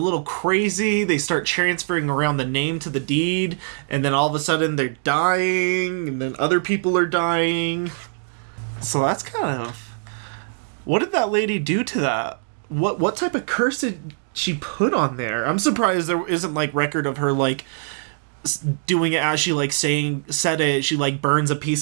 crazy. They start transferring around the name to the deed, and then all of a sudden they're dying, and then other people are dying. So that's kind of... What did that lady do to that? What type of curse did she put on there? I'm surprised there isn't, like, record of her, like, doing it as she, like, said it. She, like, burns a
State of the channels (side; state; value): left; silent; digital silence